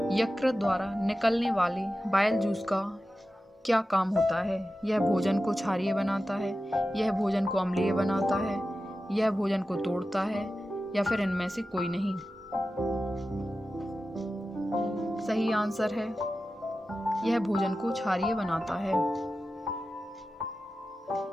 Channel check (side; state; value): both; normal; correlation 0.93